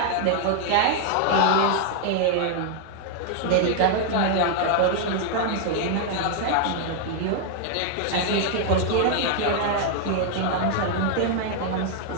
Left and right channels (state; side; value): different; both; correlation 0.00